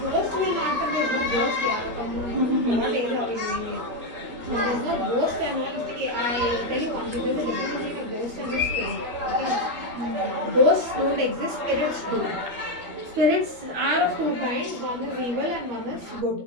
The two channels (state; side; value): late; left; 13 ms